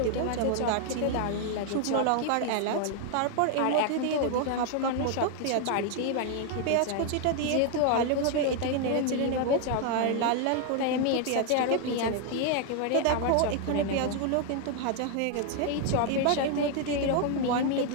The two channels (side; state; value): both; different; correlation 0.00